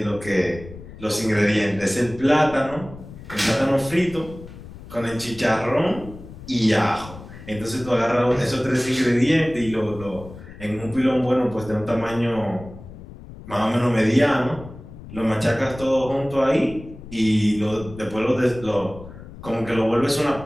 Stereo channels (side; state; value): left; noise; rumble, 16 dB below the sound